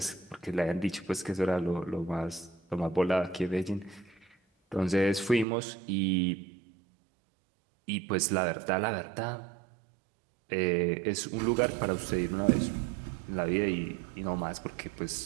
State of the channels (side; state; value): left; drops out; at 5.5 s